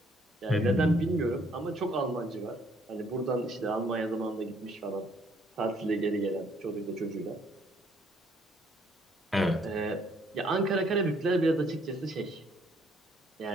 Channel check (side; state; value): both; normal; correlation 0.65